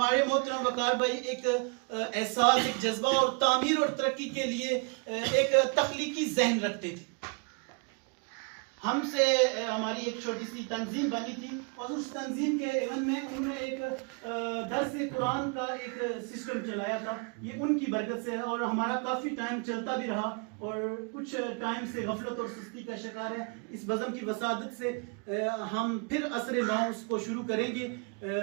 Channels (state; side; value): quieter; left; 35.6 dB